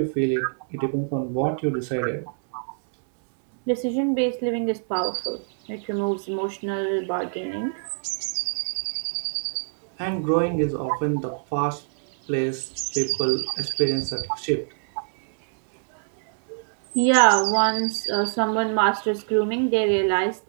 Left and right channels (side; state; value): left; silent; digital silence